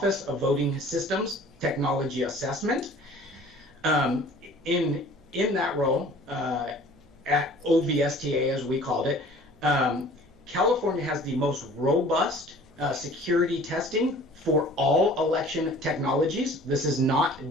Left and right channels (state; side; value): noise; right; hum, 29 dB below the sound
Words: of Voting Systems Technology Assessment. In that role, at OVSTA as we called it, California has the most robust security testing for all election technologies. This is not